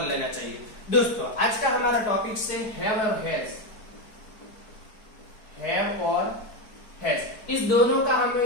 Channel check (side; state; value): right; late; 4.6 ms